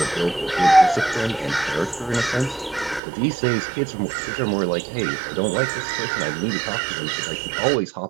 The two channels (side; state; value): left; drops out; at 3.0 s